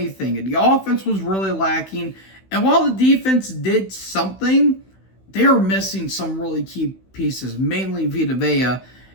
And the offense was really lacking. And while the defense did something, they are missing some really key pieces, mainly Vita Vea.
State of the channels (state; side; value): late; right; 16 ms